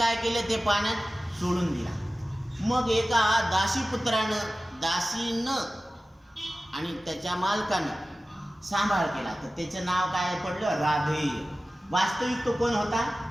केलं? ते पाण्यात सोडून दिला. मग एका दासीपुत्रानं, दासीनं आणि त्याच्या मालकानं सांभाळ केला, तर त्याचं नाव काय पडलं? राधेय. वास्तविक तो कोण होता?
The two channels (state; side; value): normal; both; correlation 0.96